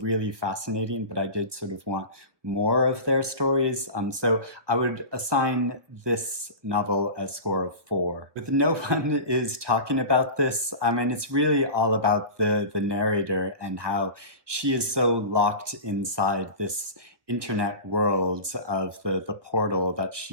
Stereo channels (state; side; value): late; left; 1.5 ms